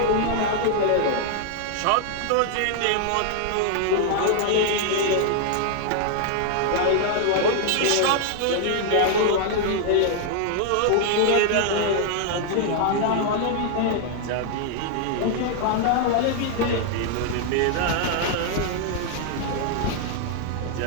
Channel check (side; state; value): both; different; correlation 0.00